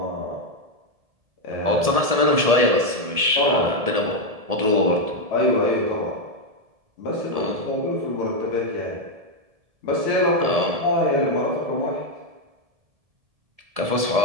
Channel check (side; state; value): left; late; 1.7 ms